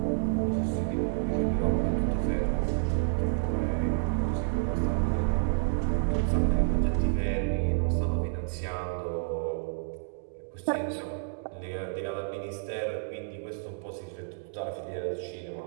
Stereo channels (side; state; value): left; silent; digital silence